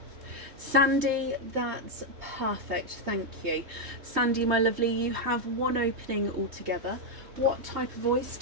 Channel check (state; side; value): late; left; 3.2 ms